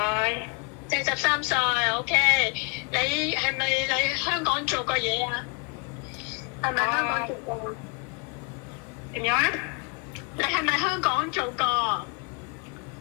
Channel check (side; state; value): right; quieter; 33.7 dB